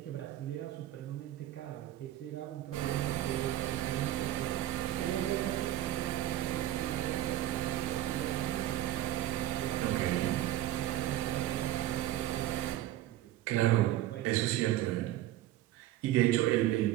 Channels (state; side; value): quieter; left; 13.9 dB